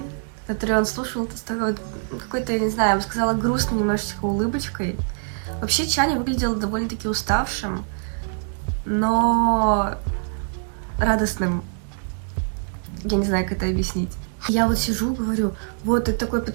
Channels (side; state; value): left; silent; 63 dB below the other